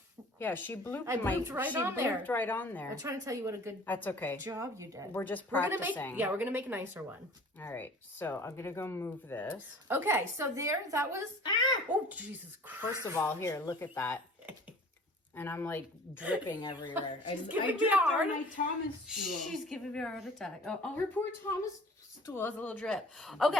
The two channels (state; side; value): normal; both; correlation 0.47